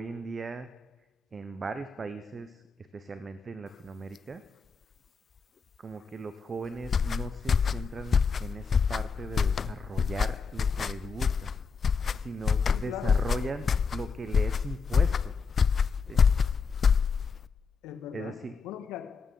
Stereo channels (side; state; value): right; quieter; 5.1 dB